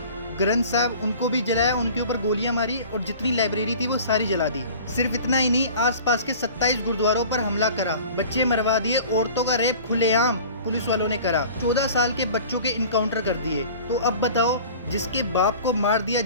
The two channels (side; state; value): both; inverted; correlation -0.43